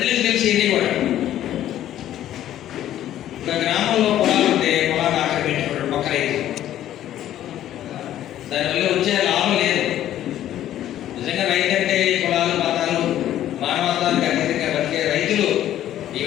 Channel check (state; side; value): quieter; right; 12.2 dB